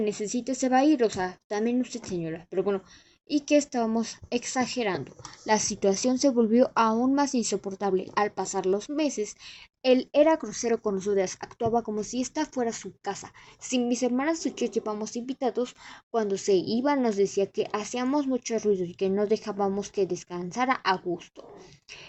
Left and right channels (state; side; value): identical; both; correlation 1.00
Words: se va a ir. O sea, también usted, señora, pero bueno, y que estábamos exagerando. La situación se volvió aún más insoportable. Al pasar los meses, él era grosero con nosotras, actuaba como si esta fuera su casa. Si mis hermanas y yo llevamos invitados, cuando se iba nos decía que hacíamos mucho ruido y que no dejábamos que descansara a gusto,